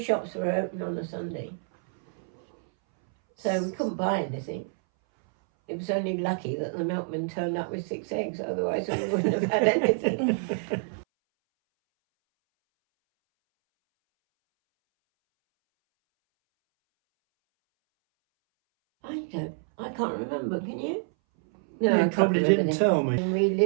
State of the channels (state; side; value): silent; left; 60 dB below the other